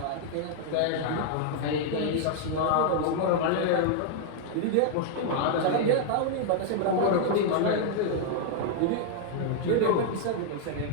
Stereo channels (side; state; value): both; different; correlation 0.00